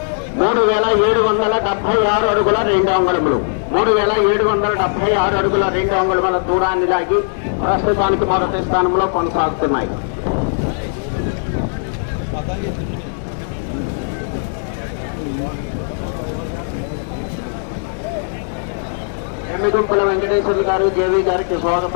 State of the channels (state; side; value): silent; right; digital silence